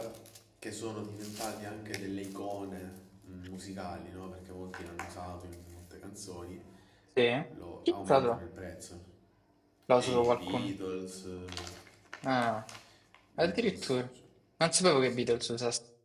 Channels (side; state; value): both; identical; correlation 1.00